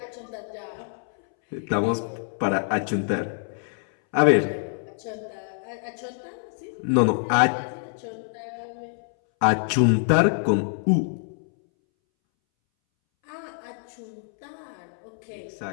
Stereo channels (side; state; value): right; silent; 61 dB below the other